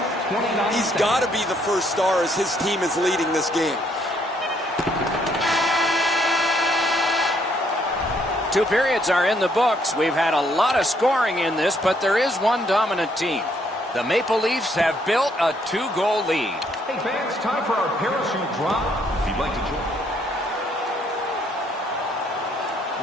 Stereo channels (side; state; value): both; normal; correlation 0.69